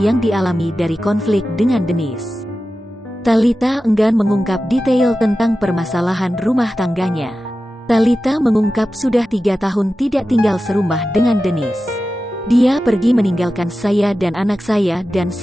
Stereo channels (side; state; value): both; normal; correlation 0.93